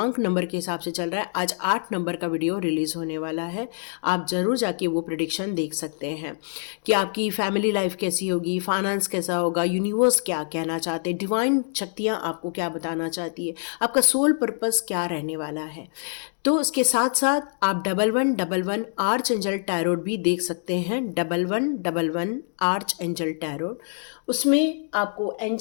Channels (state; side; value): silent; right; digital silence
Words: नंबर के हिसाब से चल रहा है। आज 8 नंबर का वीडियो रिलीज़ होने वाला है। आप ज़रूर जाके वो प्रेडिक्शन देख सकते हैं कि आपकी फैमिली लाइफ कैसी होगी, फाइनेंस कैसा होगा, यूनिवर्स क्या कहना चाहते हैं, डिवाइन शक्तियाँ आपको क्या बताना चाहती है, आपका सोल पर्पस क्या रहने वाला है। तो इसके साथ साथ आप 1111 आर्च एंजल टैरोट भी देख सकते हैं। 1111 आर्च एंजल टैरोट, उसमें आपको